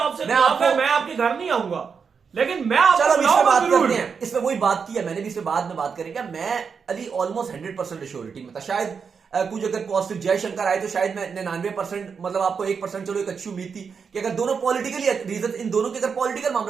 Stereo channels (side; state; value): left; quieter; 6.0 dB